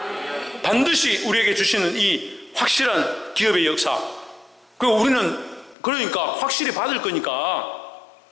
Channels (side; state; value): right; drops out; at 5.8 s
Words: 반드시 우리에게 주시는 이 확실한 기업의 역사. 그리고 우리는 그러니까 확실히 받을 거니까.